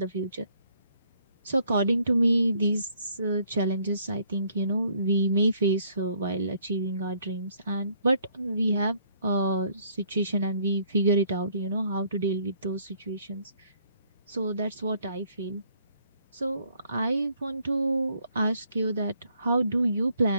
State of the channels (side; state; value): both; inverted; correlation -0.66